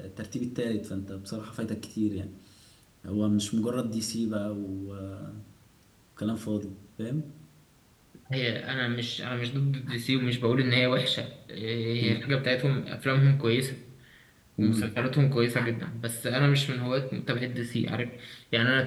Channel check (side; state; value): both; identical; correlation 1.00